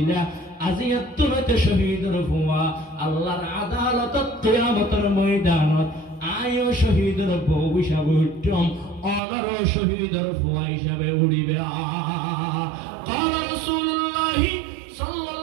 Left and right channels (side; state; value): left; drops out; at 9.2 s